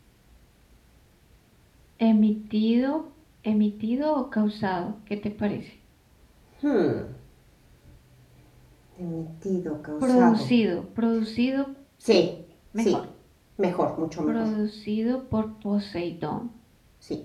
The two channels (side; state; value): both; identical; correlation 1.00